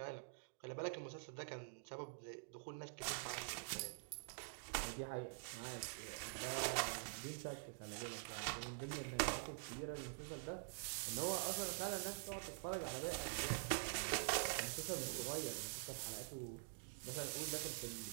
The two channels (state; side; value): silent; left; digital silence